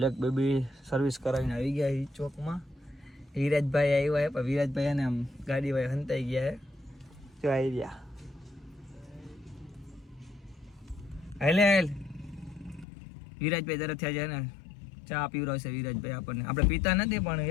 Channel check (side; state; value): right; drops out; at 12.9 s